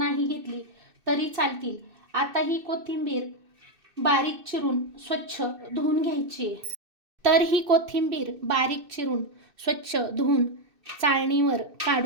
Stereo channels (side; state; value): left; late; 2.6 ms